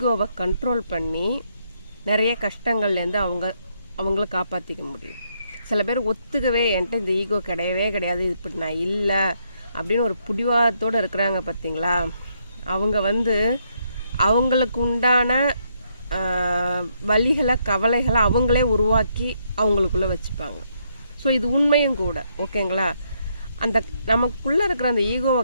கண்ட்ரோல் பண்ணி நிறைய கஷ்டங்கள்லேருந்து அவங்கள காப்பாற்றிக்க முடியும். சில பேர் ஒத்துக்கவே என்கிட்ட இந்த ஈகோ கிடையவே கிடையாது, இப்படி நான் இல்லை அப்படின்னு ஒரு பிடிவாதத்தோடு இருக்கிறாங்க பார்த்தீங்களா. அவங்க அவங்களுக்கு உண்டான வலிகளை கவலைகளை அவங்களே உருவாக்கி அவங்களுக்குள்ளே வச்சுப்பாங்க. ஸோ இது உண்மையும் கூட, ஓகேங்களா. அந்த நமக்குள்ளே இருக்கிற அந்த ஈகோவை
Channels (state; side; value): inverted; both; correlation -0.75